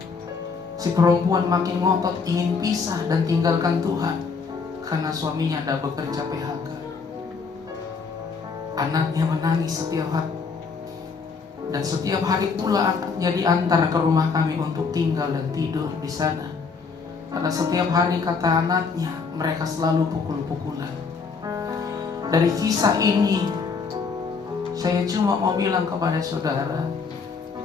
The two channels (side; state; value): right; quieter; 5.0 dB